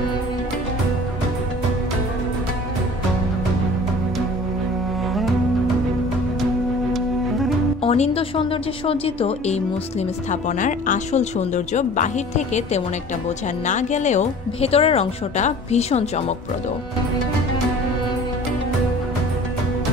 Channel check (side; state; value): both; normal; correlation 0.45